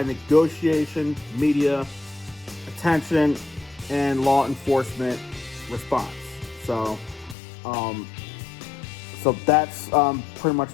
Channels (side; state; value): right; drops out; at 7.4 s